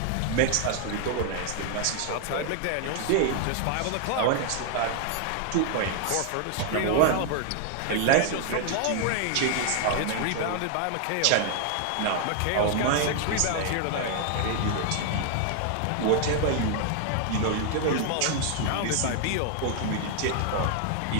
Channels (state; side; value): different; both; correlation 0.00